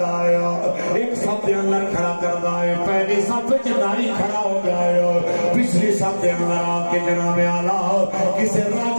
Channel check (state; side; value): inverted; both; correlation -1.00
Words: ایک صف دے اندر کھڑا کر دائے. پہلی صف نائی کھڑا ہو گیا, پچھلی صف دے اندر آ کے جناب اعلیٰ کسے